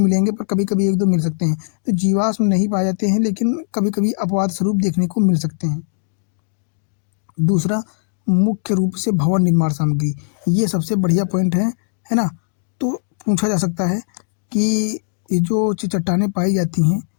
पर कभी कभी एक दो मिल सकते हैं। तो जीवाश्म नहीं पाए जाते हैं लेकिन कभी कभी अपवाद स्वरूप देखने को मिल सकते हैं। दूसरा, मुख्य रूप से भवन निर्माण सामग्री, ये सबसे बढ़िया पॉइंट है ना। तो पूछा जा सकता है कि ये जो चट्टानें पाई जाती हैं,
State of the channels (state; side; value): silent; right; digital silence